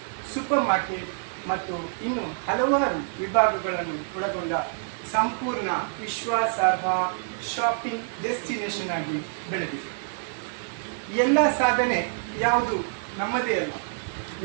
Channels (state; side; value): silent; left; 55 dB below the other